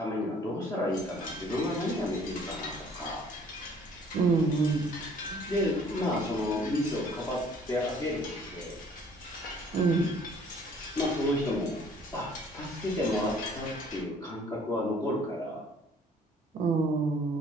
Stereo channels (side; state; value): both; normal; correlation 0.57